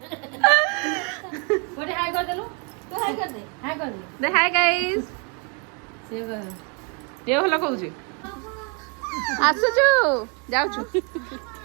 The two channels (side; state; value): left; quieter; 34.8 dB